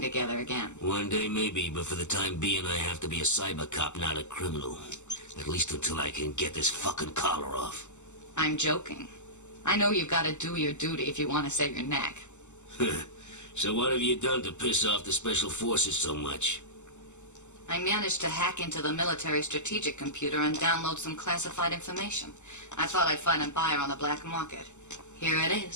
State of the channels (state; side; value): late; right; 0.83 ms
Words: again? One day maybe, but for the time being I have to be a cyber cop, not a criminal. At least until I can get this fucking collar off. I'm joking. I know you've got to do your duty if you want to save your neck. So what have you done to piss off the special forces so much? I managed to hack into the military strategic computer and download some classified information. I thought I'd find a buyer on the black market. Here it